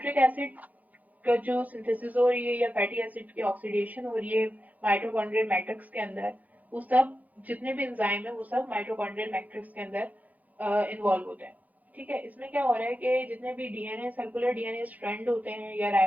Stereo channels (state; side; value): late; left; 0.079 ms